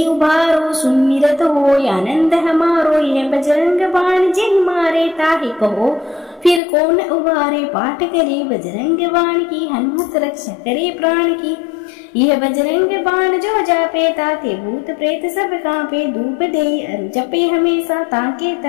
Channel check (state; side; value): drops out; right; at 6.6 s